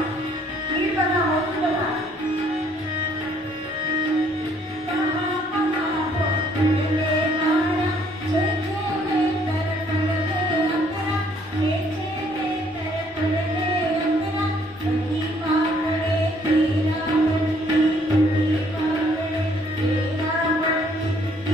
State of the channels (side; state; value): both; normal; correlation 0.64